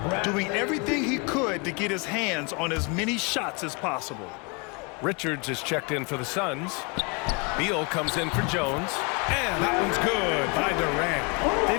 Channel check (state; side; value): quieter; right; 30.6 dB